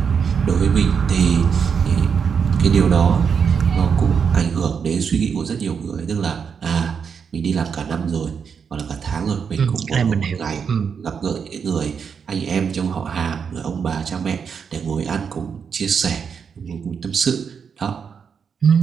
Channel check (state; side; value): quieter; left; 6.5 dB